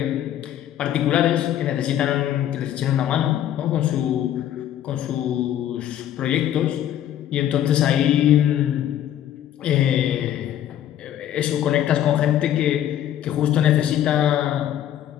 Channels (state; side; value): quieter; right; 11.3 dB